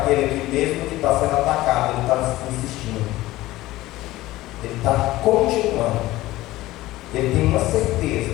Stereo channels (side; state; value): right; quieter; 17.2 dB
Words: que, mesmo que está sendo atacado, ele está insistindo, ele está continuando, ele tem uma